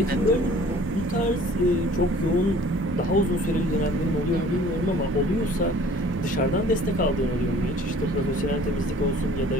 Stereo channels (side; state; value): both; normal; correlation 0.51